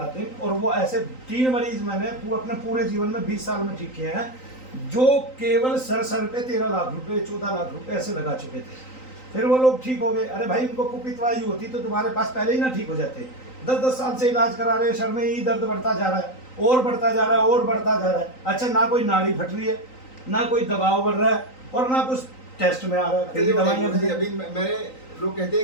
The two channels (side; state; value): right; late; 3.9 ms